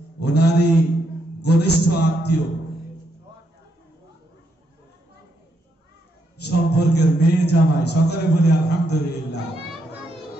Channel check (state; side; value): normal; both; correlation 0.78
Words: ওনারই ঘনিষ্ঠ আত্মীয় সম্পর্কের মেয়ে জামাই, সকলে বলি আলহামদুলিল্লাহ।